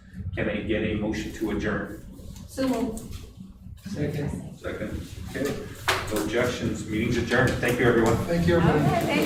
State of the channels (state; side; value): identical; both; correlation 1.00